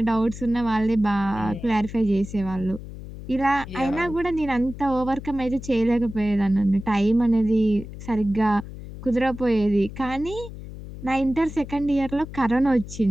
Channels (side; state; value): left; noise; hum, 12 dB below the sound